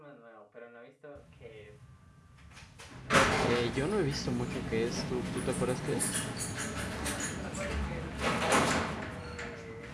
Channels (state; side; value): identical; both; correlation 1.00